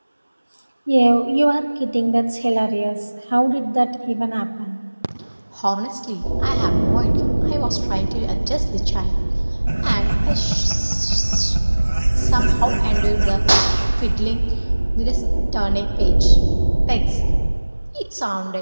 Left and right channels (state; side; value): inverted; both; correlation -1.00